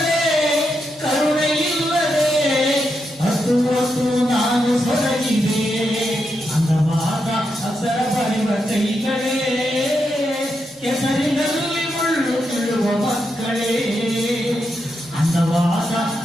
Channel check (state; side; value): normal; both; correlation 0.84